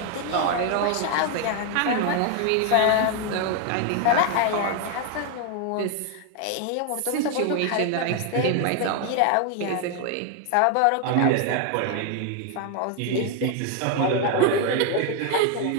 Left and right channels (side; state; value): both; different; correlation 0.01